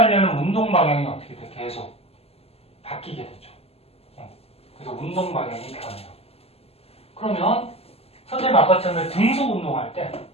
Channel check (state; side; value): late; right; 0.29 ms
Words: 운동 방향이 어떻게 돼? 계속 바뀌게 되죠. 그래서 운동 방향이 변해요. 그러면 선생님 아까처럼 등속 운동할 때